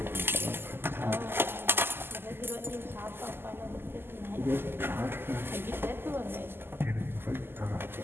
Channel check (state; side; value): late; left; 0.11 ms